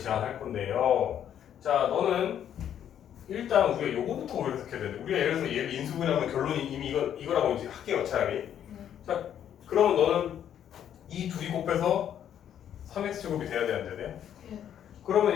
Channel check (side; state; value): right; quieter; 9.8 dB